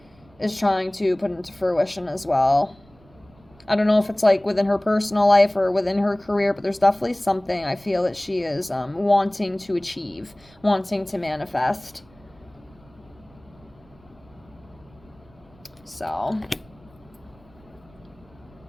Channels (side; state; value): right; noise; rumble, 27 dB below the sound